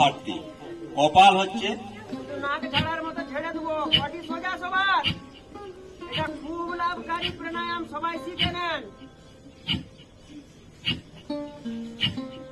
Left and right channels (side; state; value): both; identical; correlation 1.00